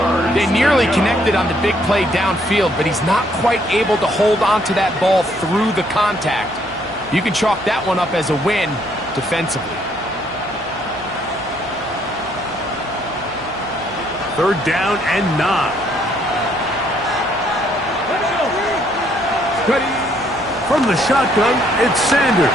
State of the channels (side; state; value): right; noise; hum, 21 dB below the sound